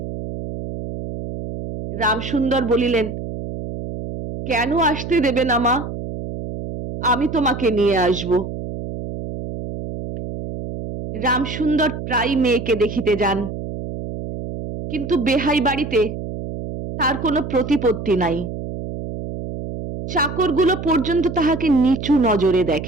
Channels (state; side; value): noise; right; hum, 8 dB below the sound